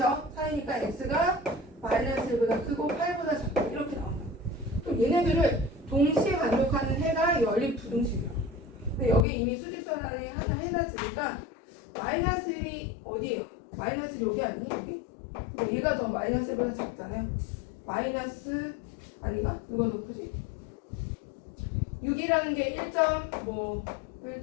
사이니까 x가 마이너스 1보다 크고 8보다 작다. 이렇게 나온다. 그럼 얘네들을 동시에 만족하는 해가 연립 부등식이야. 근데 여기 이미 수직선상에 하나 해놨으니까 마이너스 1이 어디예요? 마이너스 1이 여기 아니니? 여기? 근데 얘가 더 마이너스 1보다 작잖아요. 마이너스 아닌가? 누가 높으지? 6이라는 게 1점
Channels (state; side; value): drops out; right; at 9.2 s